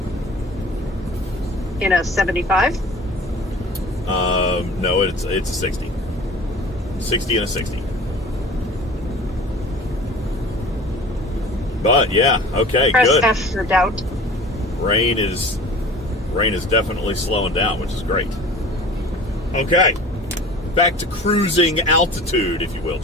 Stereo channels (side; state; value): both; normal; correlation 0.43